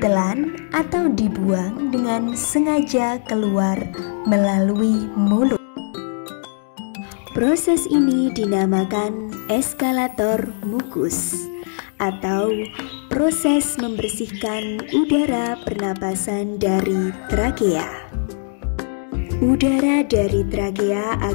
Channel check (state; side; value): silent; right; digital silence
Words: atau dibuang dengan sengaja keluar melalui mulut. Proses ini dinamakan eskalator mukus atau proses membersihkan udara pernapasan dari trakea. Udara dari trakea